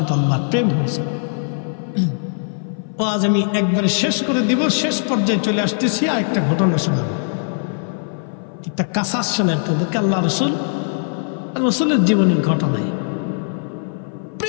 আল্লাহর প্রেম হয়ে যাবে। ও আজ আমি একবারে শেষ করে দিব, শেষ পর্যায়ে চলে আসতেছি। আর একটা ঘটনা শোনাবো, একটা কাসাস শোনেন তাদেরকে। আল্লাহ রসুলের জীবনের ঘটনায়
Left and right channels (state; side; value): silent; right; 58 dB below the other